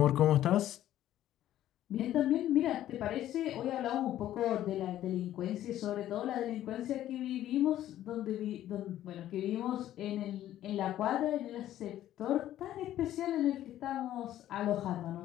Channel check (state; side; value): quieter; right; 12.7 dB